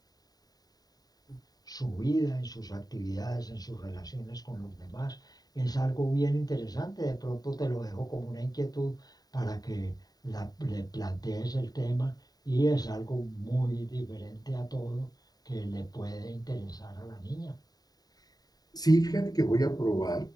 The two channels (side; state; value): right; late; 0.18 ms